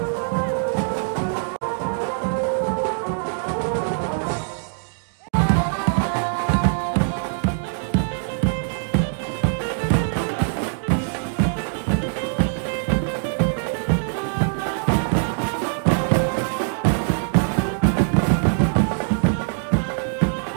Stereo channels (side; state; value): left; silent; digital silence